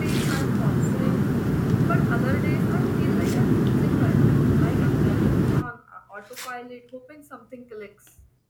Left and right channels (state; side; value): identical; both; correlation 1.00